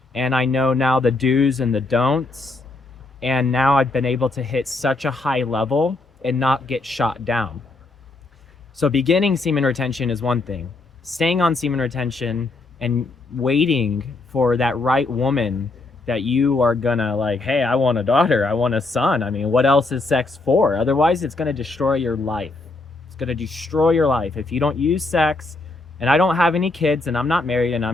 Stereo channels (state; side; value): quieter; right; 3.3 dB